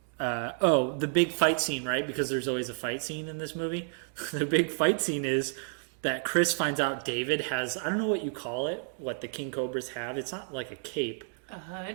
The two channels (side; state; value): left; silent; 57 dB below the other